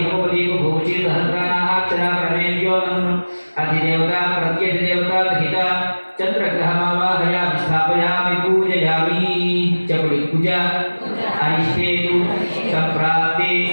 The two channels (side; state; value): both; inverted; correlation -1.00